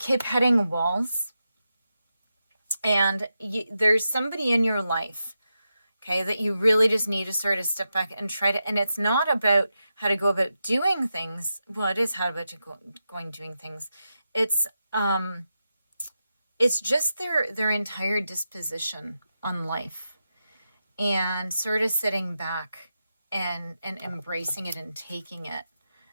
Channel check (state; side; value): inverted; both; correlation -0.89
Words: hitting walls, and there's somebody in your life Okay, that you really just need to sort of step back and try to, and it's not about how to go about doing things. Well, it is how about going doing things. It's just their entire disposition on life, and sort of sitting back and embracing it and taking it.